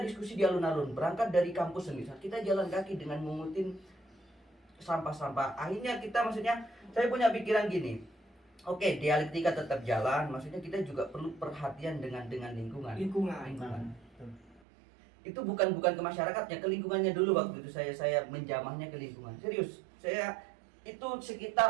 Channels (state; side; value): drops out; left; at 14.6 s